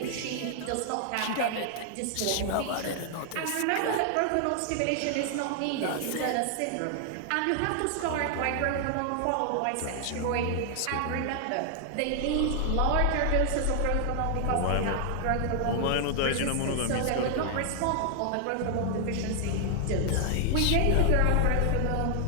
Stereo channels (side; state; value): both; different; correlation 0.00